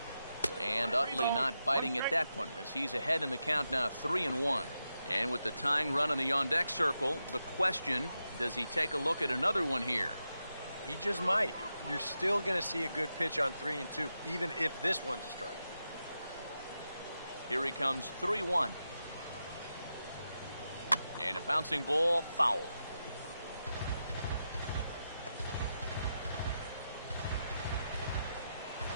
And Utley not biting at that one, as he's ahead in the count now, 3-1. And with the tying run in the on-deck circle, the question, does he take a look at another one here? He just might. You're still going to see a good pitch on 3-2, even if this one's a strike. Here he comes, 3-1. And a bouncing ball, foul.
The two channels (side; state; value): both; inverted; correlation -0.87